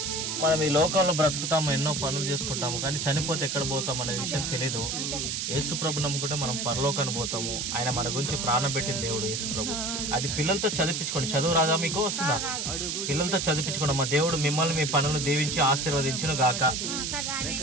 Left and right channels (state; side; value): noise; right; hiss, 2 dB below the sound